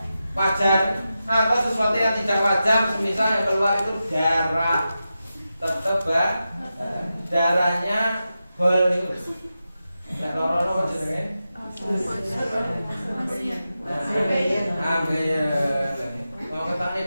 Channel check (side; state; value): both; inverted; correlation -0.91